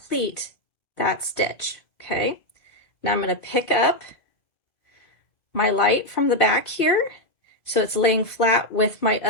that stitch, okay? Now I'm going to pick up my light from the back here, so it's laying flat with my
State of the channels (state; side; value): late; right; 1.9 ms